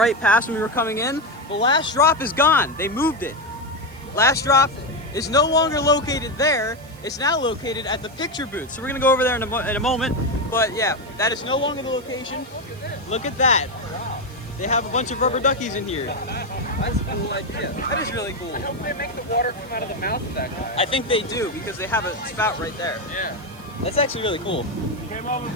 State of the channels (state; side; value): noise; right; hiss, 25 dB below the sound